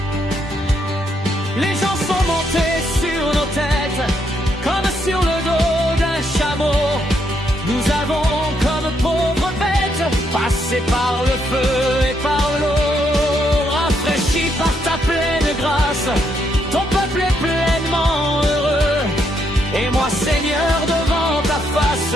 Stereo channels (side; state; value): both; normal; correlation 0.76